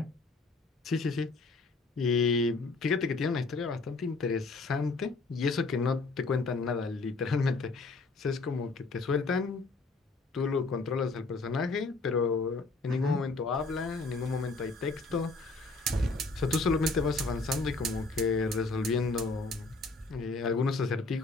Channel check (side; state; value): right; quieter; 3.7 dB